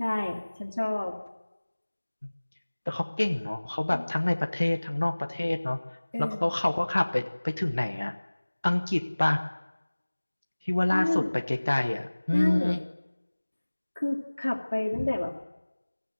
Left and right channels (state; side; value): inverted; both; correlation -1.00